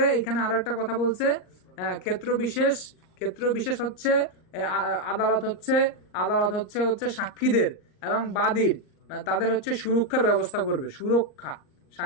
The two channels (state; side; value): late; right; 38 ms